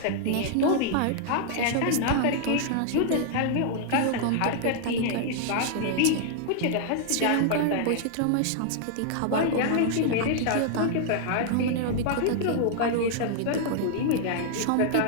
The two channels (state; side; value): different; both; correlation -0.01